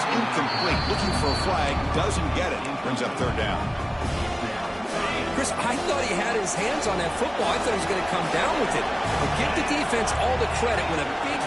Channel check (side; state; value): both; identical; correlation 1.00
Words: incomplete. Looking for a flag. Doesn't get it. Brings up third down. Chris, I thought he had his hands on that football. I thought he was going to come down with it. But give the defense all the credit when a big